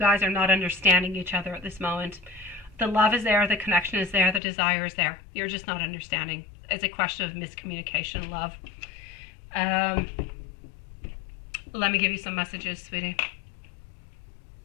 are not understanding each other at this moment. The love is there, the connection is there, the desire is there. You're just not understanding. It's a question of miscommunication, love. Let me give you some messages, sweetie.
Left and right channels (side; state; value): right; drops out; at 4.4 s